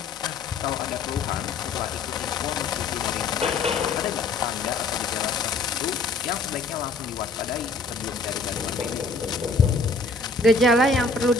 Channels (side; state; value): right; quieter; 3.7 dB